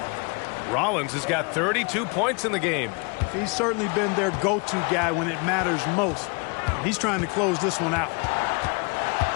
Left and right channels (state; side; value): quieter; right; 32.2 dB